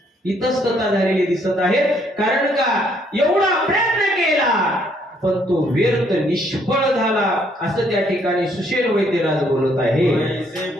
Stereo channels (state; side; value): normal; both; correlation 0.68